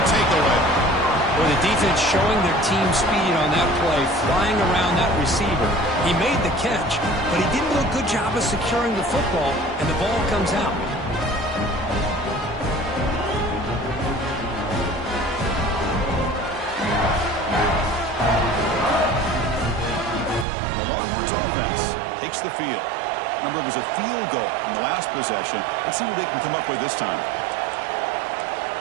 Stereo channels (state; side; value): drops out; left; at 20.5 s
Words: takeaway. Well, the defense showing their team speed on that play, flying around that receiver. He made the catch, but he didn't do a good job of securing the football, and the ball comes out. Takes the field. Remember, it was a field goal in the last possession. Let's see what they can come up with this time.